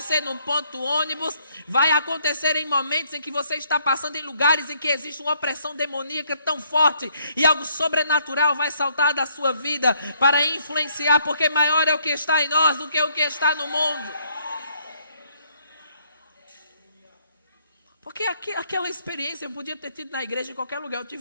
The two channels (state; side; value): inverted; both; correlation -0.68